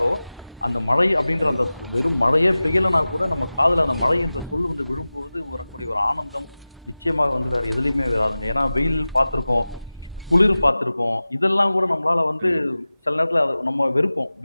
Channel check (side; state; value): both; inverted; correlation -0.97